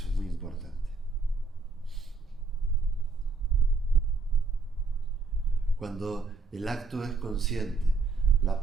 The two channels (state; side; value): quieter; left; 4.0 dB